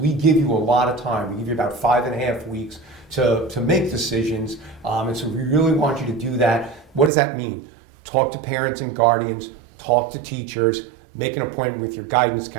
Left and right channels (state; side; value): drops out; left; at 7.1 s